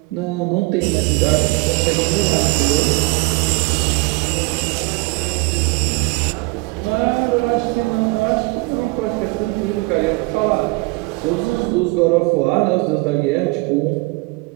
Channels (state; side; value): quieter; left; 26.1 dB